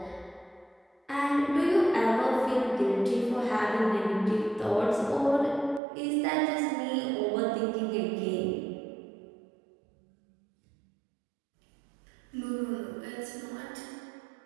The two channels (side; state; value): left; drops out; at 5.8 s